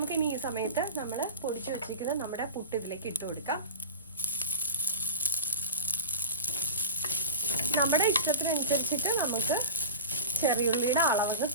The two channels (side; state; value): both; inverted; correlation -0.31